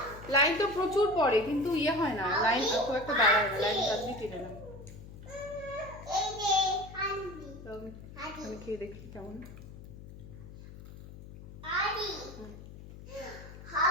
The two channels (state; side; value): noise; left; hum, 15 dB below the sound